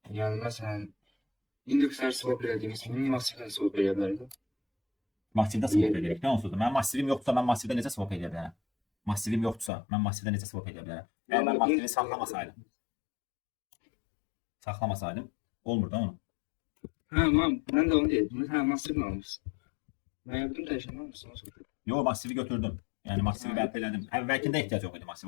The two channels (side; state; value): right; drops out; at 9.7 s